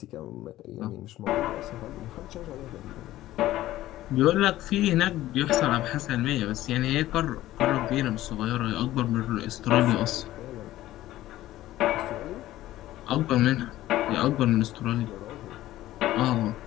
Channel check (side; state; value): right; quieter; 15.0 dB